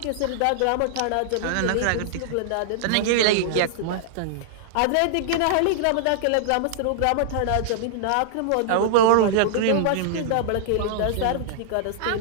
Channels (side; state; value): both; different; correlation -0.01